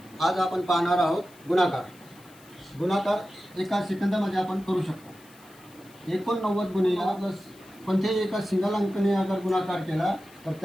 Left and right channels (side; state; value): left; noise; hiss, 25 dB below the sound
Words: आज आपण पाहणार आहोत गुणाकार. गुणाकार एका सेकंदामध्ये आपण करू शकतो. 89 गुणिले प्लस कोणत्याही एका सिंगल अंकाने अगर गुणाकार केला तर